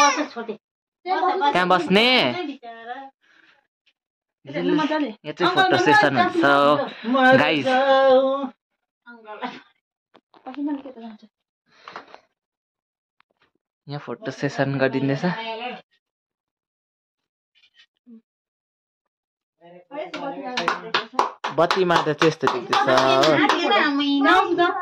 त्यहाँ बस्ने यहाँ चाहिँ फोटो सेसन हुन्छ गाइस। यहाँ फोटो सेसन गरिदिँदैछ। बत्तीमा त त्यस्तो देख्दैछ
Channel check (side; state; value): both; identical; correlation 1.00